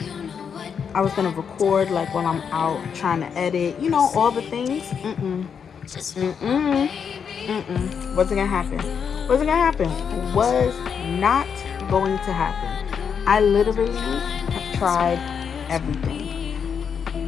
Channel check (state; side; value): quieter; right; 6.9 dB